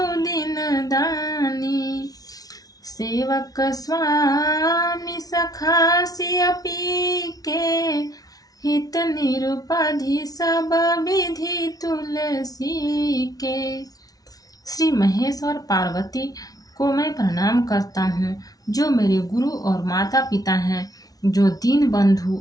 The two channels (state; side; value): late; right; 0.18 ms